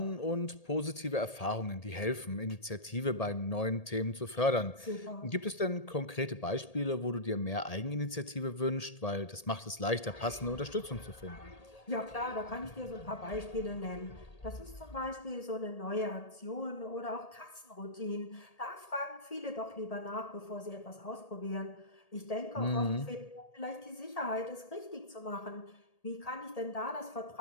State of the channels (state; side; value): late; right; 1.8 ms